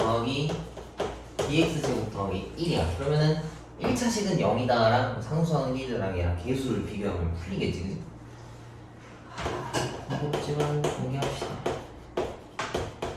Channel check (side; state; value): both; identical; correlation 1.00